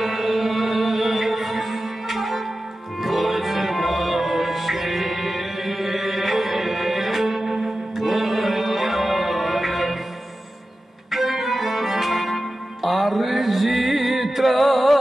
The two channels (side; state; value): both; normal; correlation 0.93